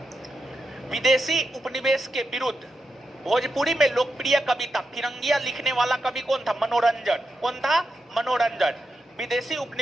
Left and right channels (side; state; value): both; normal; correlation 0.87